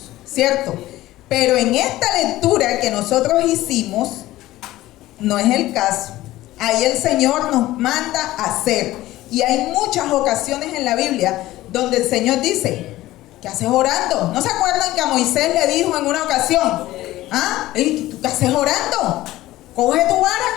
¿cierto? Pero en esta lectura que nosotros hicimos, no es el caso. Ahí el Señor nos manda a hacer. Y hay muchas ocasiones en la Biblia donde el Señor dice, ¿qué haces orando? ¿No se acuerdan que a Moisés le dijo en una ocasión? ¿Tú qué haces orando? Coge tu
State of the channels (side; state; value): right; quieter; 16.3 dB